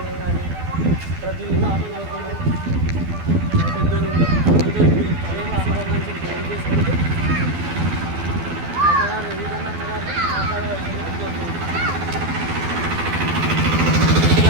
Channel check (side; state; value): left; late; 12 ms